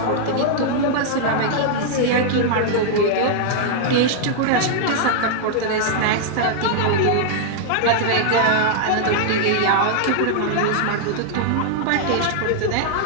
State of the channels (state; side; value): different; both; correlation -0.01